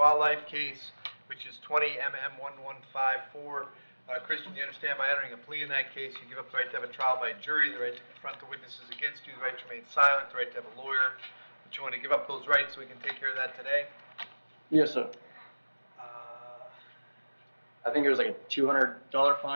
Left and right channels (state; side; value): inverted; both; correlation -1.00